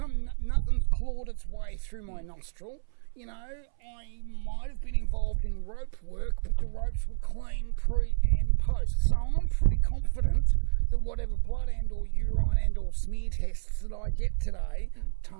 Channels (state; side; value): silent; left; 58 dB below the other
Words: Nothing's clawed its way through my nostril. You know, I might have been involved in rope work, but the ropes were clean pre and post. So I'm pretty confident that whatever blood and or urine and or smear tests that I get today,